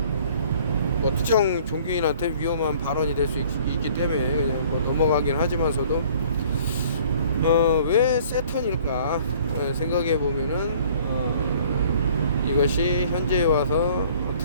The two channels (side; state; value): both; inverted; correlation -0.54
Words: 뭐 특정 종교인한테 위험한 발언이 될 수 있기 때문에 그냥 뭐 넘어가긴 하지만서도, 왜 세턴일까 생각해 보면은 이것이 현재에 와서